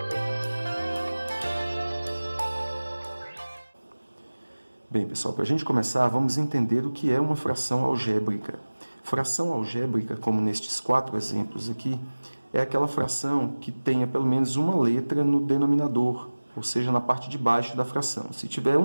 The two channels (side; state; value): both; inverted; correlation -1.00